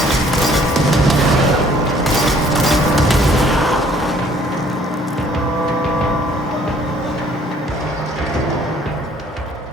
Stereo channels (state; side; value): normal; both; correlation 0.59